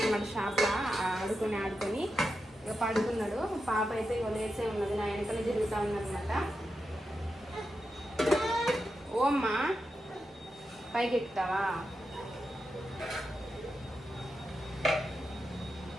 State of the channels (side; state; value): both; normal; correlation 0.88